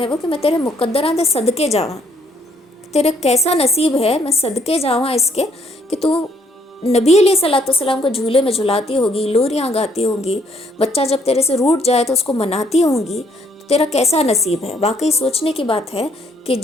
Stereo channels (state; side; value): normal; both; correlation 0.68